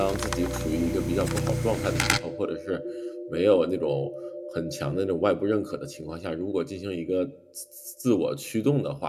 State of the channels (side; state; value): both; identical; correlation 1.00